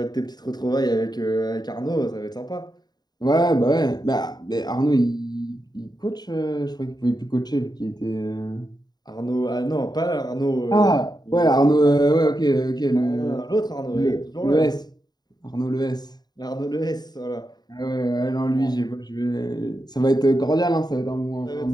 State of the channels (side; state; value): right; late; 0.20 ms